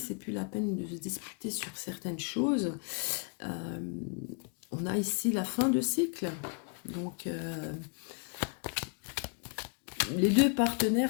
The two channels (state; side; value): quieter; right; 36.5 dB